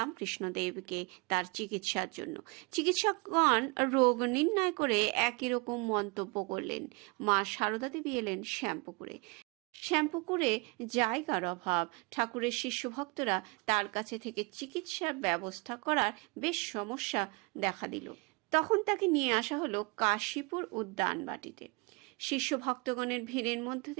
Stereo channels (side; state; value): left; quieter; 29.0 dB